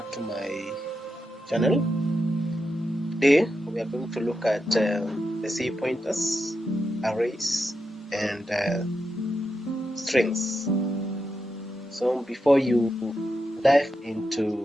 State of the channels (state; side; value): normal; both; correlation 0.87